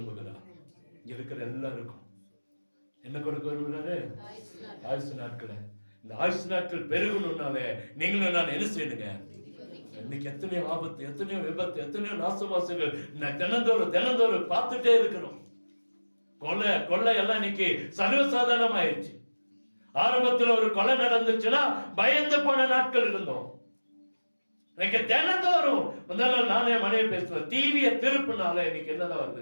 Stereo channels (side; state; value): both; inverted; correlation -1.00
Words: இங்க இருக்கிற எல்லாருக்கும் என்ன கொடுக்க விரும்புகிறாரு? ஆயுசு நாட்களை. இந்த ஆயுசு நாட்கள் பெருகணும்னாலே நீங்களும் நான் என்ன செய்யணுங்க? இன்னைக்கு எத்தனையோ ஆபத்து, எத்தனையோ விபத்து, எத்தனையோ நாசமாசங்கள் தினந்தோறும் பார்த்துட்டே இருக்கிறோம். கொலை எல்லாம் இன்னைக்கு சர்வசாதாரணம் ஆயிடுச்சு. ஆரம்பத்தில் ஒரு கொலை நடந்துச்சுன்னா பயந்து போன நாட்கள் இருந்தோம். இன்னைக்கு தினந்தோறும் முதல்ல நானே மனைவி பேசுவேன், டிவியை திருப்பினால இன்னைக்கு என்னதான்